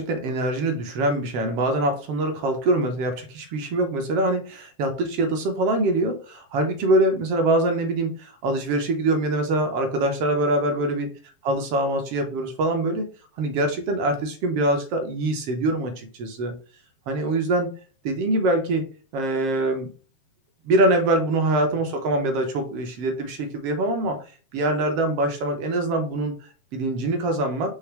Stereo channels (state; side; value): late; left; 7.5 ms